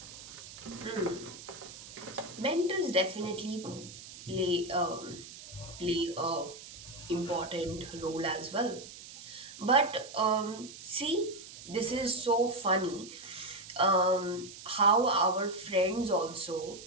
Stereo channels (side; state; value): right; noise; hiss, 15 dB below the sound